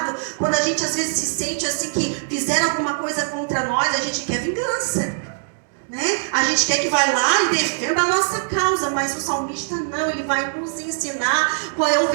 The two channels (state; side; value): silent; left; digital silence